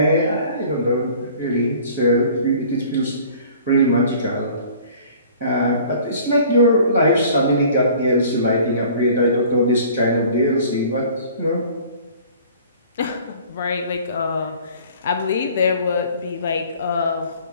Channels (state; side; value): inverted; both; correlation -0.50